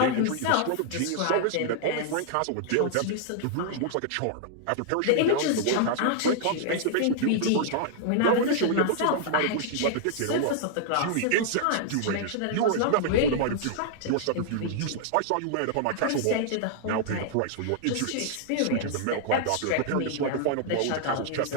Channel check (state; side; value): different; both; correlation -0.01